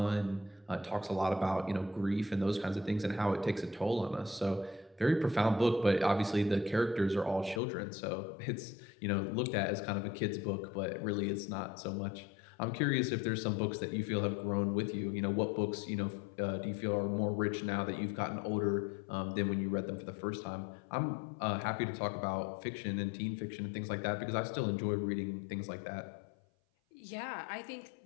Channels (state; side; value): drops out; right; at 7.6 s